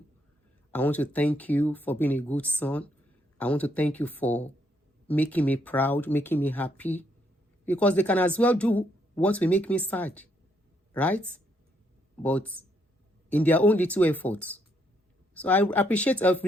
I want to thank you for being a good son. I want to thank you for making me proud, making me happy. Because they can as well do what will make me sad, right? But in their own little efforts. So I appreciate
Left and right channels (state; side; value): normal; both; correlation 0.74